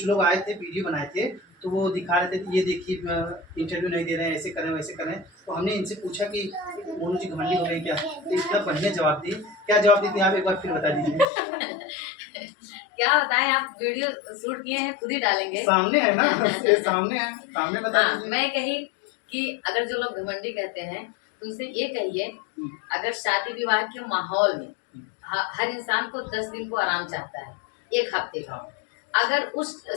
लोग आए थे वीडियो बनाए थे तो वो दिखा रहे थे कि ये देखिए इंटरव्यू नहीं दे रहे हैं, ऐसे करें वैसे करें। तो हमने इनसे पूछा कि मोनू जी घमंडी हो गए क्या, तो इतना बढ़िया जवाब दी। क्या जवाब दी थी आप एक बार फिर बता दीजिए। क्या बताएं, आप वीडियो शूट किए हैं खुद ही डालेंगे, सामने है ना, ये सामने है, सामने बता दीजिए। मैं कही कि अगर जो लोग घमंडी कहते हैं उनसे ये कहिए, अगर शादी विवाह के माहौल में हर इंसान को 10 दिन को आराम चाहता है, 1 हफ्ते का। अगर उस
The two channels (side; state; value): right; drops out; at 11.3 s